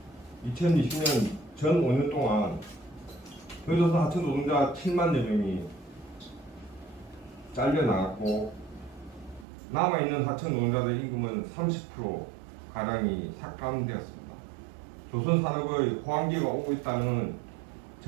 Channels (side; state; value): left; drops out; at 9.5 s